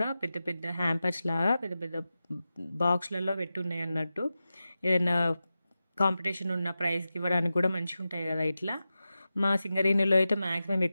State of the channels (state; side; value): inverted; both; correlation -0.93